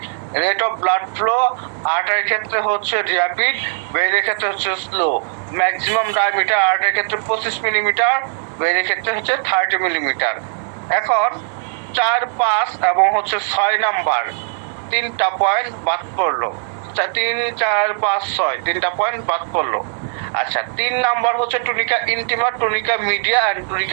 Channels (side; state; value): left; silent; digital silence